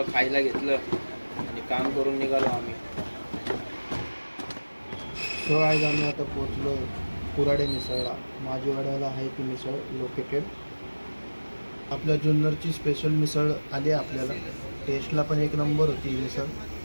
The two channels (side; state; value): both; inverted; correlation -1.00